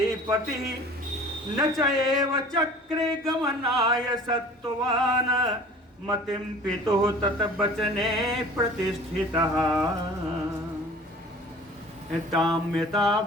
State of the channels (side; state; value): both; normal; correlation 0.45